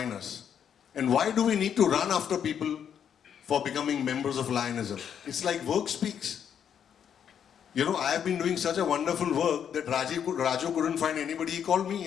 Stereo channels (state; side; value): quieter; right; 8.4 dB